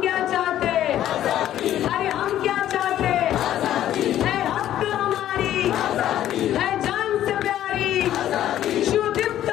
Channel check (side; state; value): right; quieter; 12.0 dB